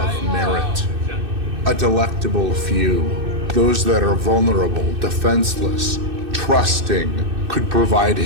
merit. A delectable few, those that are vulnerable, defenseless, trusting, could provide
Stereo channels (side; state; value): left; late; 2.6 ms